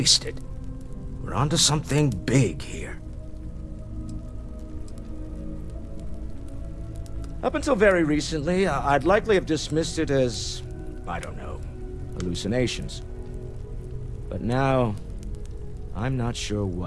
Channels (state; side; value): identical; both; correlation 1.00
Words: We're onto something big here. Up until very recently, I'd likely have dismissed it as, I don't know, hallucinations. But now, I'm not sure